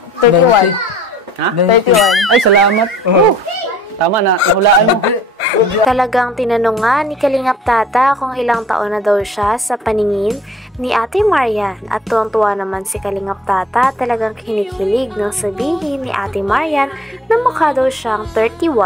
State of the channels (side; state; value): both; normal; correlation 0.52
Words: 31. Ha? 31. Ay, salamat. Tama na, hulaan mo. Talagang tinanong nga ni Kalingap Tata kung ilang taon na daw siya sa paningin ni Ate Marian at tuwang-tuwa naman si Kalingap Tata talagang kinikilig nang sabihin ni Ate Marian na mukha daw siyang